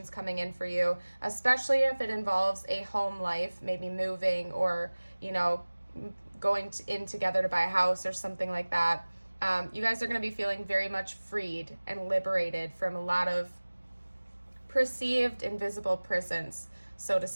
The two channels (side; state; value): both; inverted; correlation -1.00